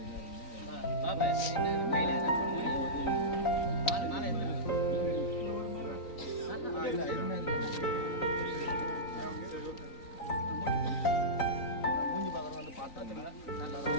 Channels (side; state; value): right; late; 3.9 ms